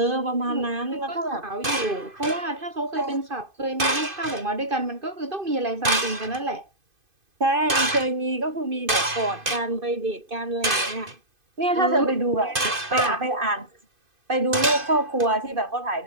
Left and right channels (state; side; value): late; left; 2.5 ms